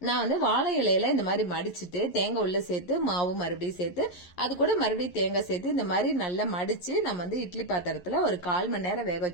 நான் வந்து வாழை இலையில இந்த மாதிரி மடிச்சிட்டு தேங்காய் உள்ள சேர்த்து மாவு மறுபடியும் சேர்த்து அது கூட மறுபடியும் தேங்காய் சேர்த்து இந்த மாதிரி நல்லா மடிச்சு நம்ம வந்து இட்லி பாத்திரத்துல ஒரு 1/4 மணி நேரம் வேக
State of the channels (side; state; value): right; late; 11 ms